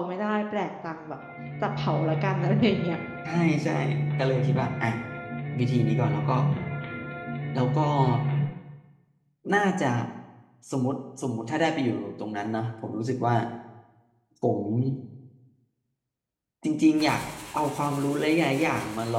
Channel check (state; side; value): identical; both; correlation 1.00